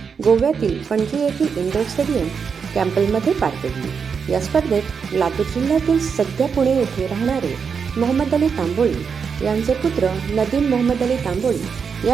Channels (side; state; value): left; quieter; 6.2 dB